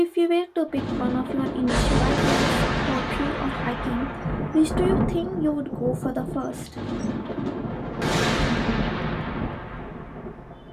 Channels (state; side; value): identical; both; correlation 1.00